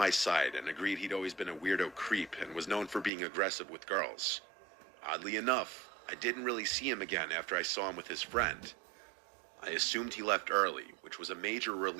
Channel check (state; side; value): drops out; left; at 3.1 s